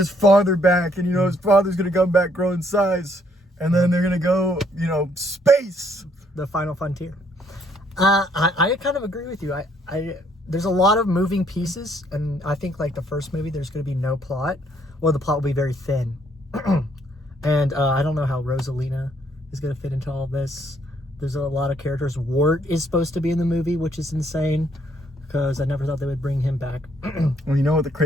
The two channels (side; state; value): both; normal; correlation 0.69